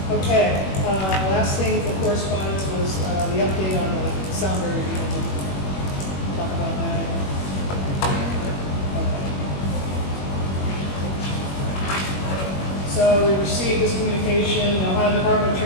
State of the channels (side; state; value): right; late; 21 ms